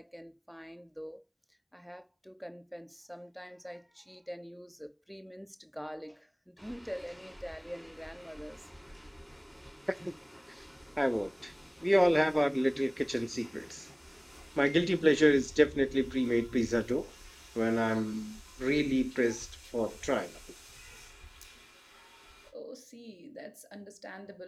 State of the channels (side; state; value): both; identical; correlation 1.00